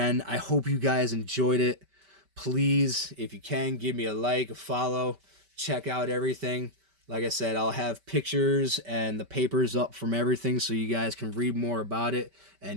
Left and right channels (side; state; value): left; late; 5.1 ms